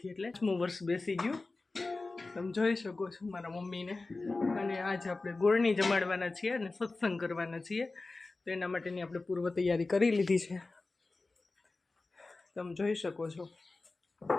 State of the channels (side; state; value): right; quieter; 3.4 dB